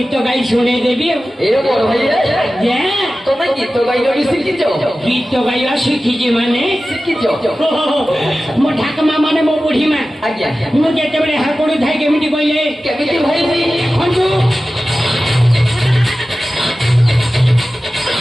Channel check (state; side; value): normal; both; correlation 0.95